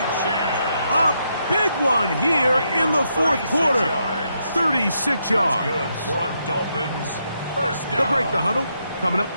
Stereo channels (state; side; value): inverted; both; correlation -0.79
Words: A big one here in the fourth quarter. 36 yards. They'll break the huddle. Coming up